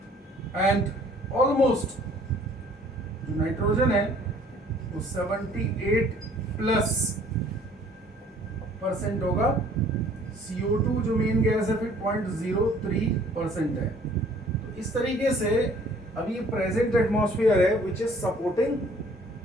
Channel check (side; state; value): both; normal; correlation 0.56